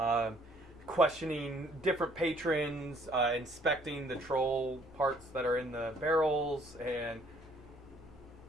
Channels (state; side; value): normal; both; correlation 0.62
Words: Questioning different patrons, inspecting the troll parts that are in the barrels, and...